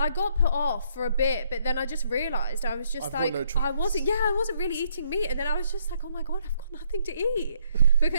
got put off for a bit, but then I just realised I was just like, I wasn't really eating meat, and then I was just like, oh my god, I've got nothing to eat.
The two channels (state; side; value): inverted; both; correlation -0.69